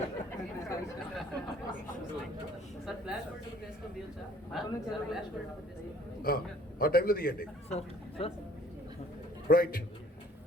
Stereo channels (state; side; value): normal; both; correlation 0.57